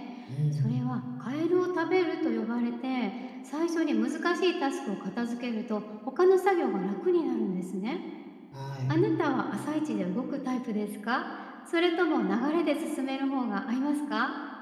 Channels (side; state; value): both; identical; correlation 1.00